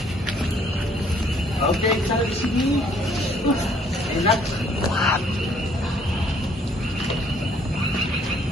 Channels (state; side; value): normal; both; correlation 0.63